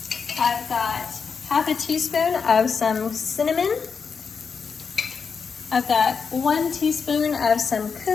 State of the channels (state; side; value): quieter; right; 5.7 dB